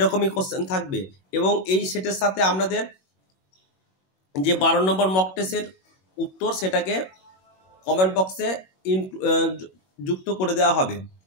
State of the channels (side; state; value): right; late; 21 ms